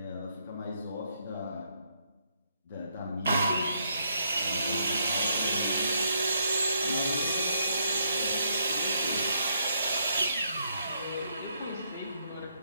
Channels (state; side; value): inverted; both; correlation -0.74